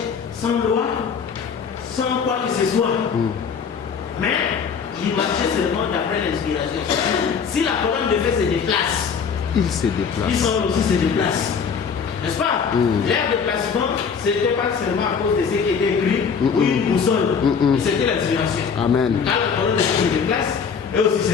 sans loi, sans quoi que ce soit. Mais il marchait seulement d'après l'inspiration. Si la colonne de feu se déplace, il se déplace. Israël aussi se déplace. N'est-ce pas? Leur déplacement, ce n'était pas seulement à cause de ce qui était écrit ou une boussole. C'était l'inspiration. Amen. Quand la colonne de feu se déplace, eux aussi se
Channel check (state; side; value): quieter; right; 6.3 dB